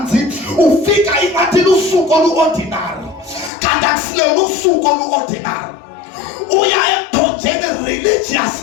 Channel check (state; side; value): drops out; right; at 3.5 s